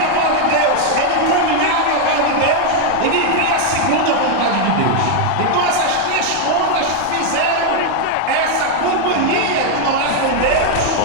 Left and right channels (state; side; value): different; both; correlation 0.01